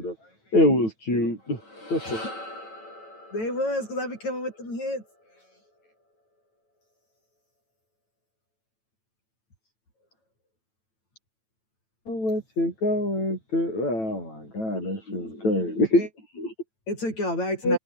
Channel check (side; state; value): right; late; 9.1 ms